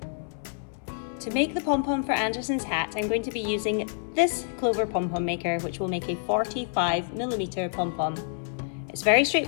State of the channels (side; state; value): right; silent; 60 dB below the other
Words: To make the pom-pom for Anderson's hat, I'm going to be using this Clover Pom Pom maker, which will make a 45mm pom-pom. It's very